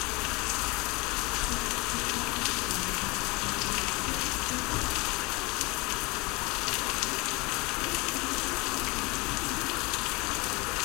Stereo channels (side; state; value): right; quieter; 25.7 dB